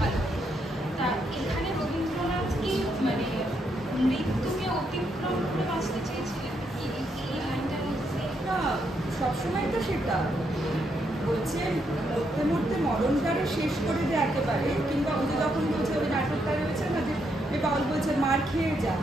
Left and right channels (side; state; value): both; normal; correlation 0.78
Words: মৃত্যুকে অতিক্রম করে বাঁচতে চেয়েছিলেন কি এই লাইনটার মধ্যে? না, সবসময় তো সেটা বলছে মরতে মরতে মরণটারে শেষ করে দেয় একেবারে, কিংবা ওদের যখন বলছে ওই নাটকটা রয়েছে না যে পাউল বলছে মার খেয়ে যা,